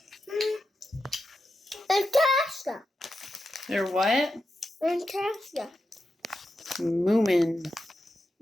Fantastic. They're what? Fantastic. Moomin.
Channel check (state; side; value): normal; both; correlation 0.88